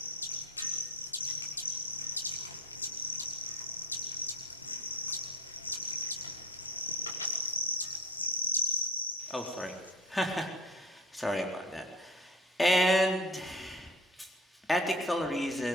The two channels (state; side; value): normal; both; correlation 0.33